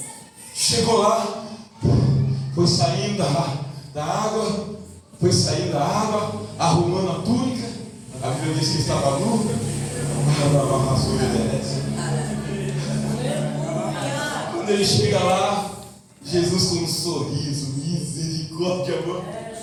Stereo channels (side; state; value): both; identical; correlation 1.00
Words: Chegou lá, foi saindo da água, arrumando a túnica. A Bíblia diz que estava nu. Quando ele chega lá, Jesus com um sorriso, misericórdia, amor.